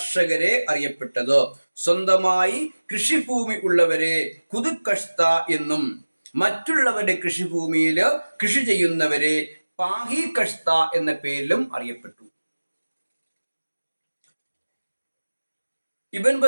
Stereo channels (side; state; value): both; inverted; correlation -1.00